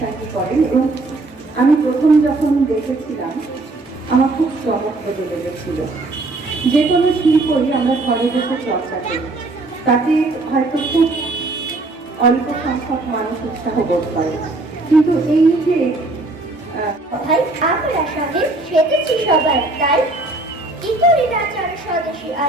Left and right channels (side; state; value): left; quieter; 3.1 dB